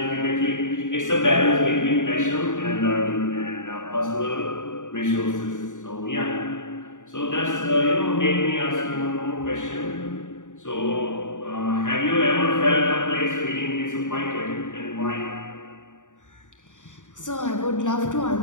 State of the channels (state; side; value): late; right; 0.86 ms